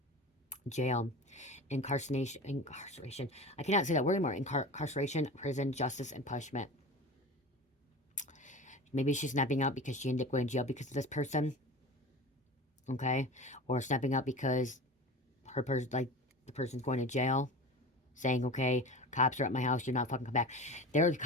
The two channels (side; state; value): both; normal; correlation 0.33